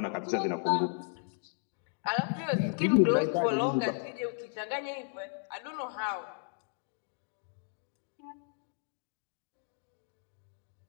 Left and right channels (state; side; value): silent; right; digital silence